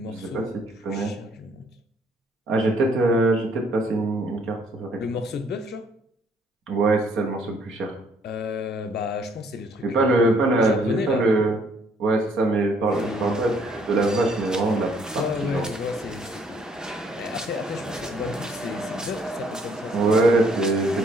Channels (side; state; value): both; normal; correlation 0.64